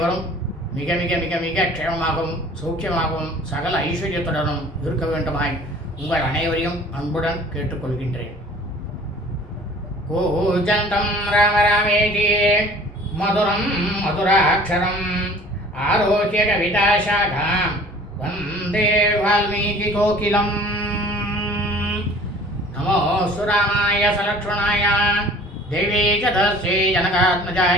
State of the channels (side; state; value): both; normal; correlation 0.48